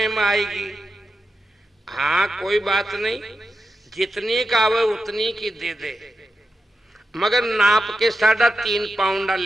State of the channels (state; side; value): normal; both; correlation 0.90